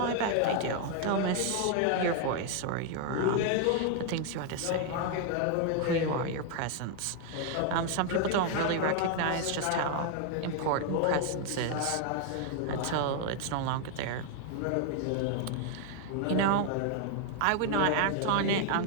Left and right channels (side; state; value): both; different; correlation 0.00